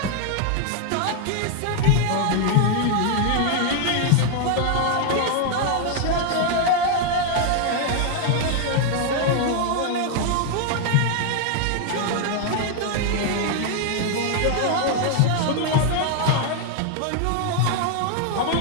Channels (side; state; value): both; different; correlation 0.00